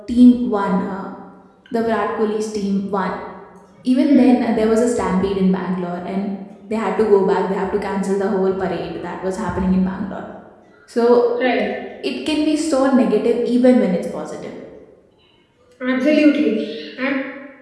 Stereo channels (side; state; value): both; identical; correlation 1.00